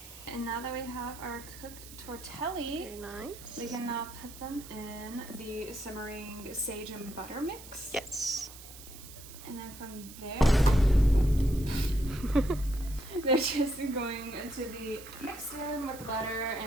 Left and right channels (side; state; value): right; noise; hiss, 16 dB below the sound